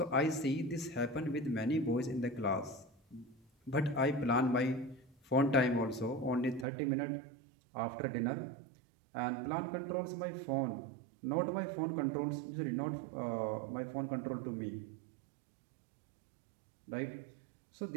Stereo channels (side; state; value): left; drops out; at 6.7 s